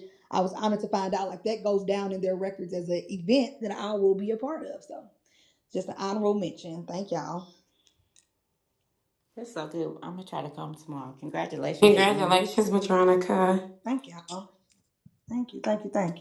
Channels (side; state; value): both; identical; correlation 1.00